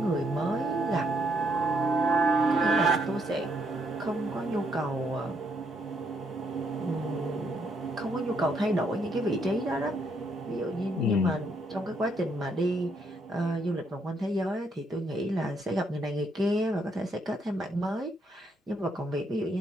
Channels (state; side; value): normal; both; correlation 0.73